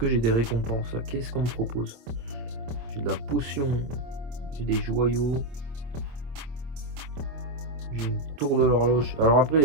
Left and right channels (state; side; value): late; left; 26 ms